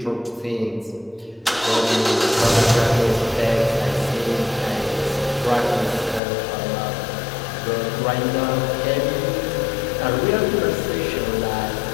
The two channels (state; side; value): drops out; right; at 6.2 s